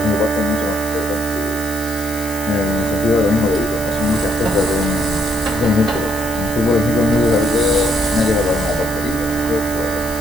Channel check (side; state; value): left; noise; hiss, 12 dB below the sound